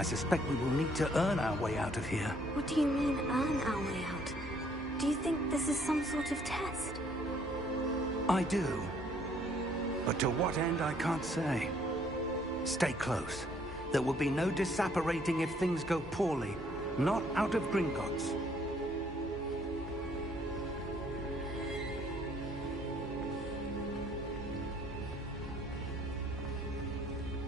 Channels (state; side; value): normal; both; correlation 0.64